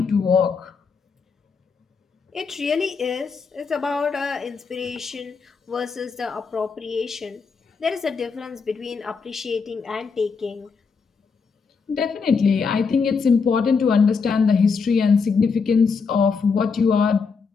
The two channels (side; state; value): right; quieter; 5.3 dB